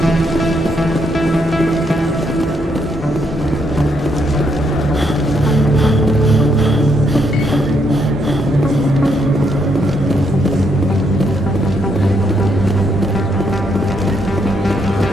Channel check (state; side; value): normal; both; correlation 0.75